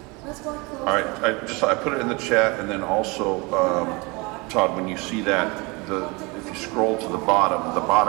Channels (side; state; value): left; quieter; 26.8 dB